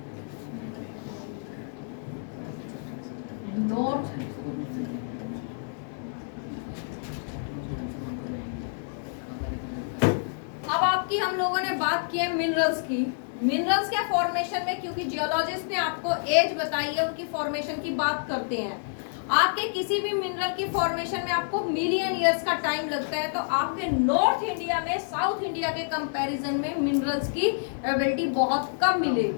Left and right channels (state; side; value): silent; right; digital silence